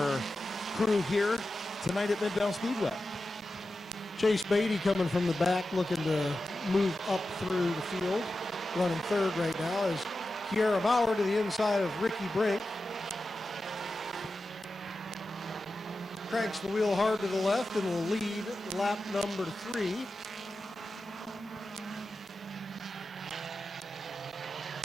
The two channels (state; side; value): normal; both; correlation 0.92